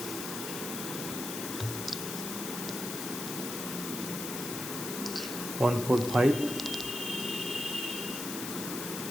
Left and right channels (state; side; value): noise; left; hiss, 5 dB below the sound